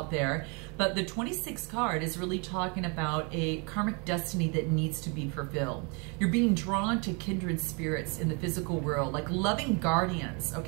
there. But the 26th card is really talking about a karmic destiny that needs to be fulfilled. You're being drawn to kindred spirits in the physical world, like loving guardians,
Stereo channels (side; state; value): left; quieter; 33.0 dB